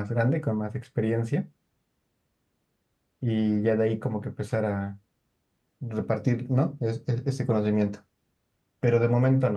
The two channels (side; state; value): both; identical; correlation 1.00